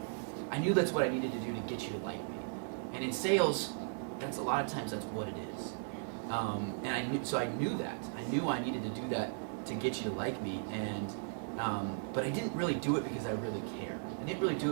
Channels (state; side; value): silent; left; digital silence